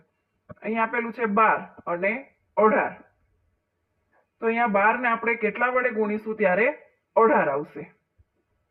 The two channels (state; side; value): identical; both; correlation 1.00